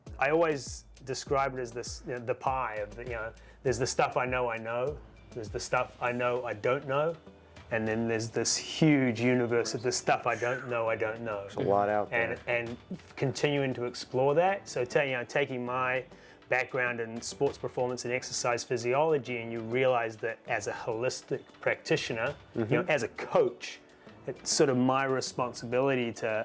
always describe it as this, the pie of there's the stuff I know, there's the stuff I know I don't know, and then there's this huge universe of the stuff I don't know. There's a lot out there. And continuing to explore that. So taking my background in sports performance and exercise physiology, and you realize that as a holistic practitioner, as a coach, it's sort of my responsibility to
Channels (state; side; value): identical; both; correlation 1.00